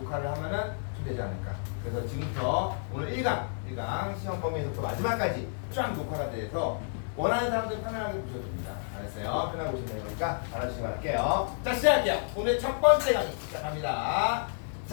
하면은 좀 되지 않을까. 그래서 지금부터 오늘 1강 시험 범위에서부터 마지막까지 쫙 녹화가 돼서 원하는 사람들 편안하게 보셔도 됩니다. 알았어요? 편하게 보시면 되는 거니까 알아주시기 바랄게요. 자 시작할게요. 오늘 첫 번째 강의 시작합니다.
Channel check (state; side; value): silent; right; digital silence